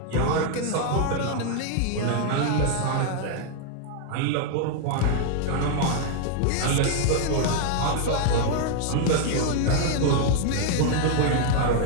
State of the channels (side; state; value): both; different; correlation 0.00